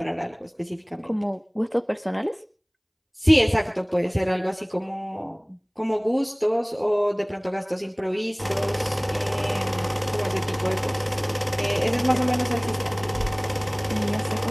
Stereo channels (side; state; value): both; identical; correlation 1.00